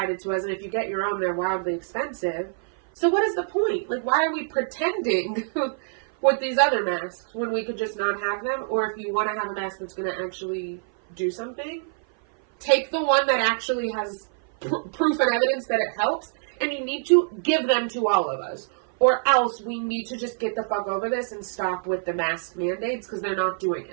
to us, and if you get your own, they're wildly expensive. So what is the point? Like, why are we pretending with these other masks when we could just not have them? Or if you want to have a mask that's going to actually do something, take the one that actually has proof and evidence that it helps, and you need to give them to all of us. Or else we need to just get the fuck over this and stop with the mask mandates because they're not doing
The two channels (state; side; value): silent; left; 56 dB below the other